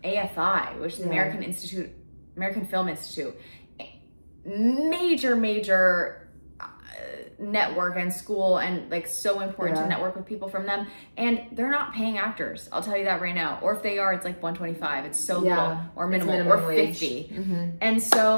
AFI, which is the American Film Institute. Major network and school and like so important to network with people from them, and they're not paying actors, I'll tell you that right now. Or if they are, it's like $125. It's so little, or minimum or wage. 50. And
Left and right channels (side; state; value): both; inverted; correlation -1.00